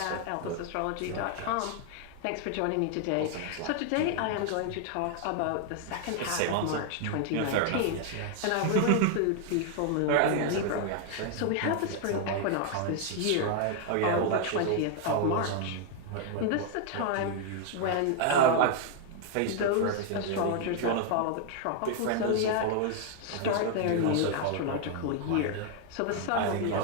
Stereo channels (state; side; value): different; both; correlation 0.00